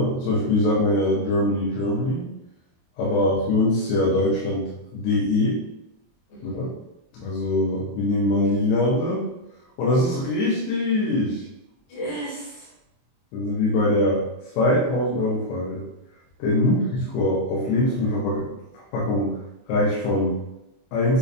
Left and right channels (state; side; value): late; right; 23 ms